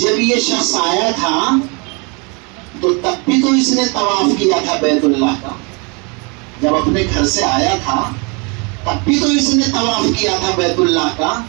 یہ شخص آیا تھا تو تب بھی تو اس نے طواف کیا تھا بیت اللہ کا. جب اپنے گھر سے آیا تھا تب بھی تو اس نے طواف کیا تھا بیت اللہ کا.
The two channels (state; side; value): quieter; left; 31.6 dB